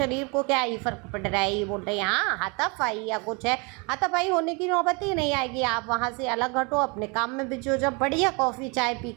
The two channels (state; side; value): quieter; left; 30.9 dB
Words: को क्या ही फ़र्क पड़ रहा है, ये बोल रहे हैं हाँ हाथापाई या कुछ है, हाथापाई होने की नौबत ही नहीं आएगी, आप वहाँ से अलग हटो, अपने काम में बिजी हो, जब बढ़िया कॉफ़ी चाय पी